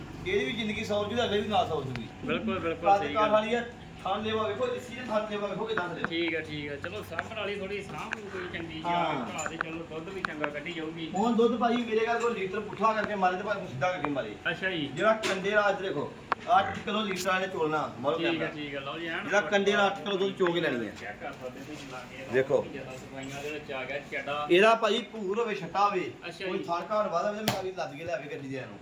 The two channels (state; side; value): identical; both; correlation 1.00